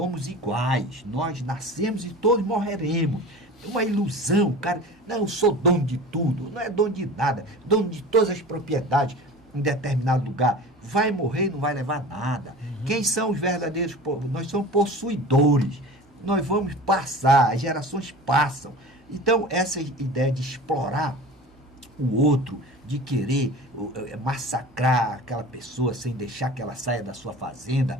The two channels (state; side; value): normal; both; correlation 0.36